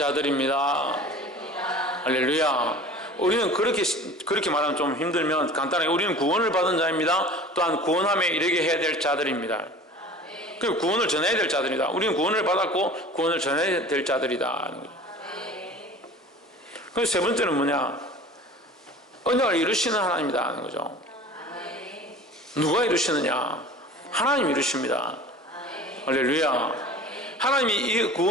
할렐루야. 우리는 그렇게 말하면 좀 힘들면 간단하게 우리는 구원을 받은 자입니다. 또한 구원함에 이르게 해야 될 자들입니다. 그 구원을 전해야 될 자들이다. 우리는 구원을 받았고 구원을 전해야 될 자들이다. 그래서 세 번째는 뭐냐? 언약을 이루시는 하나님이다 하는 거죠. 누가 이루시느냐? 하나님이 이루십니다. 할렐루야. 하나님이 이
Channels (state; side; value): normal; both; correlation 0.41